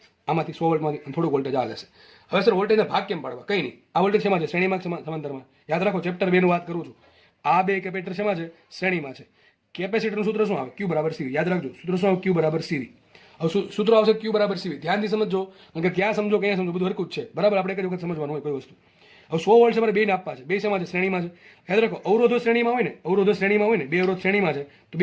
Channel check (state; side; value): identical; both; correlation 1.00